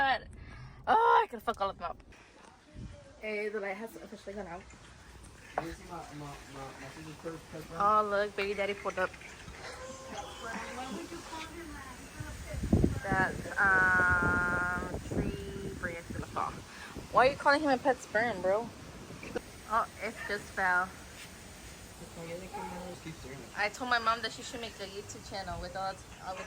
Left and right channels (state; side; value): identical; both; correlation 1.00